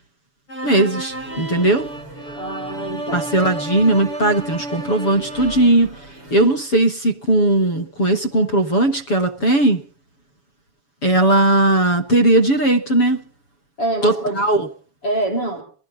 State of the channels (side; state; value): right; late; 7.0 ms